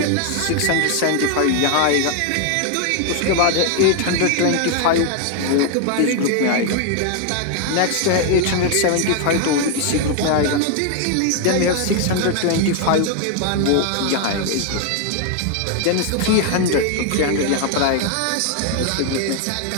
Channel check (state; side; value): different; both; correlation 0.00